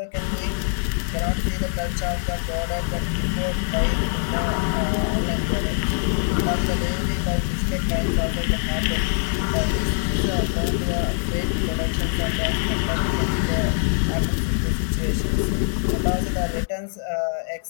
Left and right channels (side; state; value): right; silent; digital silence